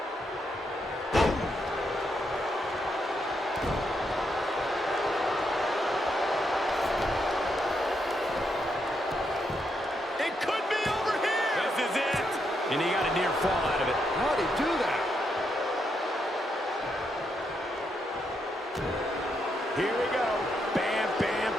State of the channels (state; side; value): normal; both; correlation 0.80